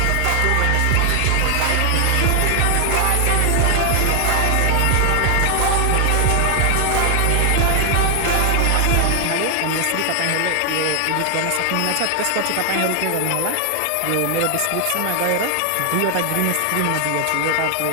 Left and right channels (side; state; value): both; different; correlation 0.00